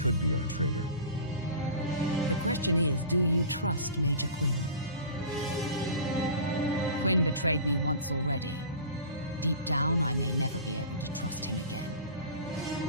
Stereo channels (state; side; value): inverted; both; correlation -0.37